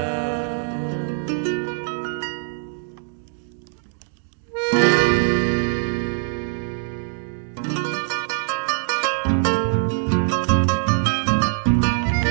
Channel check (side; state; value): left; silent; digital silence